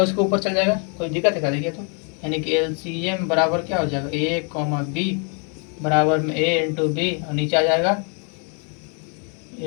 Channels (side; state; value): right; quieter; 39.3 dB